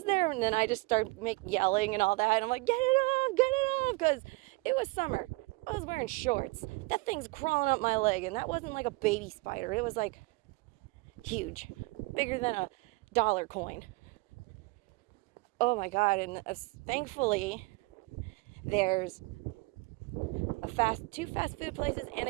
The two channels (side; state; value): left; quieter; 25.0 dB